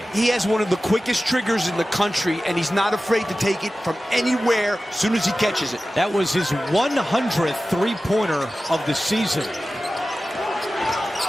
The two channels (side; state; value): both; normal; correlation 0.95